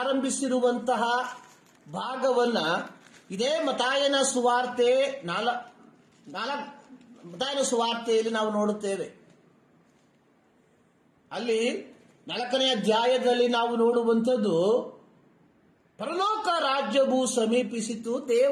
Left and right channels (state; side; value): identical; both; correlation 1.00